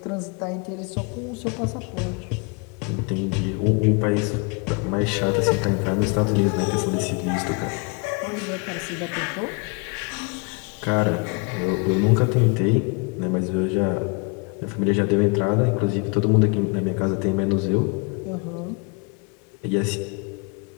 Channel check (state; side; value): quieter; right; 31.7 dB